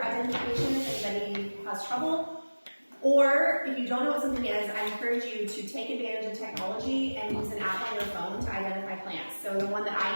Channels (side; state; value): both; inverted; correlation -1.00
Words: identification if anybody has trouble. Or if you don't know what something is, I encourage you to take advantage of technology and use an app on your phone to identify plants. So the one that